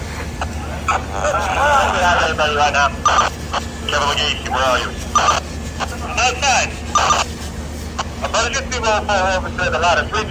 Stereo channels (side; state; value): both; identical; correlation 1.00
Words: We have anybody right now. Kevin McGee, where are you? Outside. Emergency roll call officer, the ladder